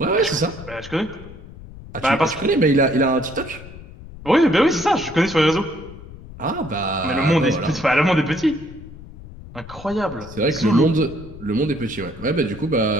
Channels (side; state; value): left; noise; rumble, 16 dB below the sound